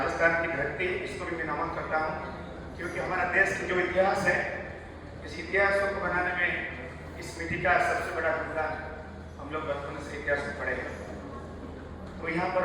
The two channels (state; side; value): identical; both; correlation 1.00